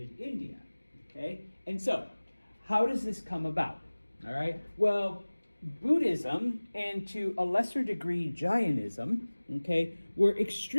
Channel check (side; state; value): both; inverted; correlation -1.00